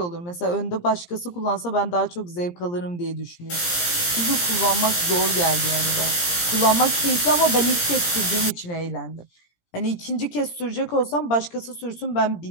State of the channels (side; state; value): right; late; 17 ms